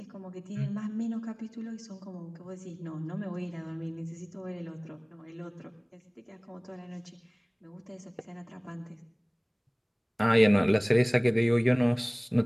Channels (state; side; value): identical; both; correlation 1.00